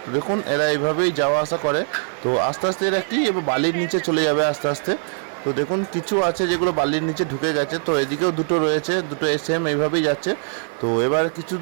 দেখুন এরা এইভাবেই যাওয়া আসা করে। তো আস্তে আস্তে এরা কি এবার বালির নিচে চলে যাবে আস্তে আস্তে। তো দেখুন কিছু আছে যেগুলো বালির নিচে ঢুকে গেছে, তো এদিকেও দুটো রয়েছে, দুটো সেম এইভাবেই যাচ্ছে। তো এবার কিছু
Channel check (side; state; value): left; silent; 55 dB below the other